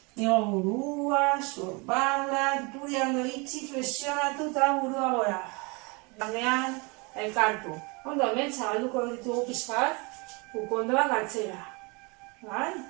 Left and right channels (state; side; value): quieter; left; 29.3 dB